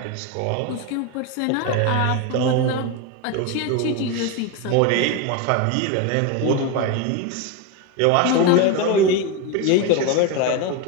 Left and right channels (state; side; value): different; both; correlation 0.03